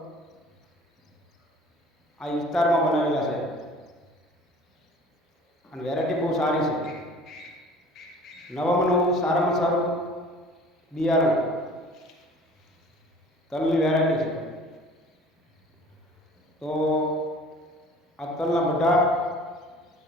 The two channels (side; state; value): both; normal; correlation 0.47